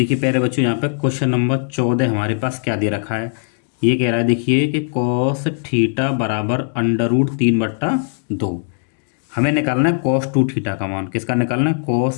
प्यारे बच्चों यहाँ पे क्वेश्चन नंबर 14 हमारे पास क्या दे रखा है। ये कह रहा है देखिए कि कॉस थीटा बराबर √3/2। हमें निकालना है कॉस 2 थीटा का मान। किसका निकालना है,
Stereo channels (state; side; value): silent; right; digital silence